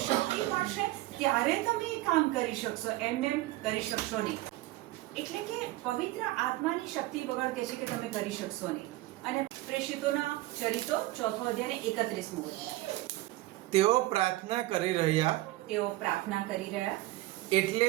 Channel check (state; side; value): quieter; left; 18.2 dB